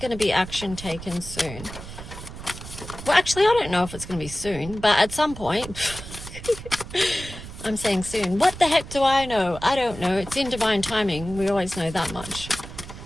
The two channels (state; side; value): noise; right; rumble, 12 dB below the sound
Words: to be action taken soon. Well, actually, I don't know if it's going to be soon, but at some point... I'm saying soon. What the heck do I know? I don't know. It's in divine timing. We always know that much.